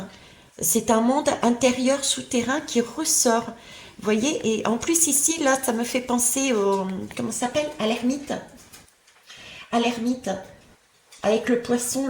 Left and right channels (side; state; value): both; identical; correlation 1.00